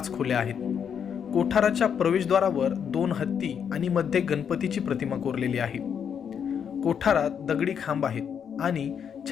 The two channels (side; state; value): right; quieter; 7.7 dB